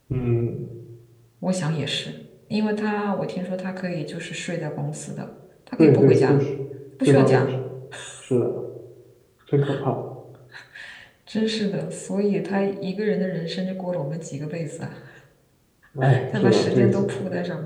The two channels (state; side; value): identical; both; correlation 1.00